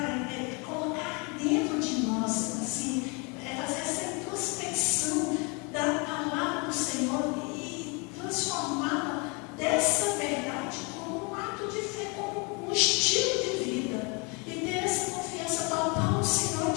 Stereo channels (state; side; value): quieter; right; 31.3 dB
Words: colocar dentro de nós, assim, fazer essa introspecção da palavra do Senhor e transformá-la dessa verdade como um ato de fé, como um estilo de vida. E ter essa confiança total no Senhor